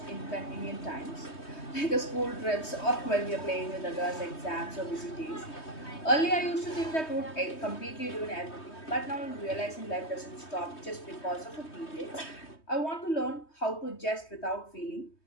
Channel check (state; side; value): late; right; 3.2 ms